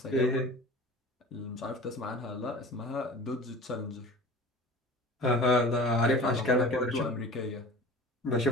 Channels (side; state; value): both; normal; correlation 0.39